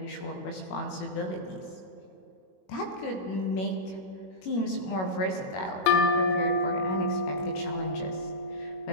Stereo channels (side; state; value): right; late; 21 ms